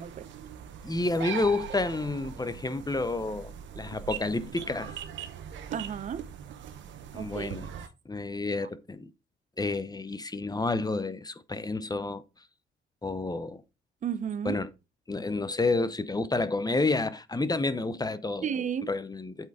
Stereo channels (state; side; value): normal; both; correlation 0.66